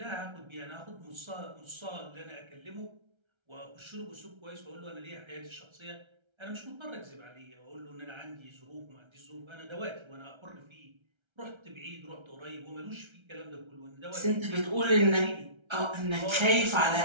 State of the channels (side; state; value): left; late; 1.3 ms